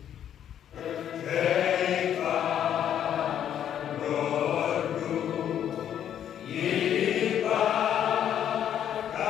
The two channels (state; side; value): quieter; right; 9.9 dB